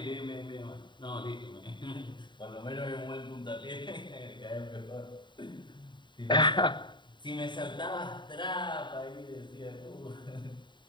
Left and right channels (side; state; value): right; late; 0.23 ms